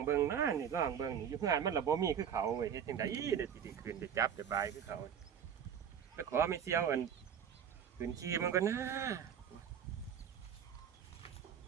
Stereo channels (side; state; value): left; quieter; 8.4 dB